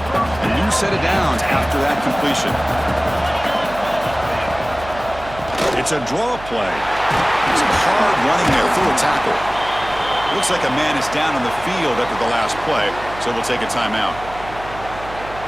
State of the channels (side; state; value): right; noise; hum, 15 dB below the sound